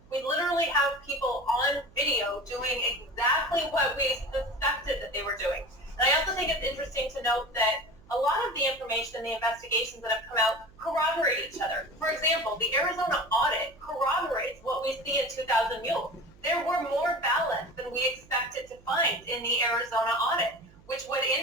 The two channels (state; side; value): noise; right; hum, 25 dB below the sound